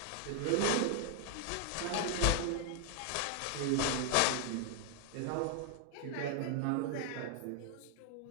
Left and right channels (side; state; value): both; different; correlation 0.00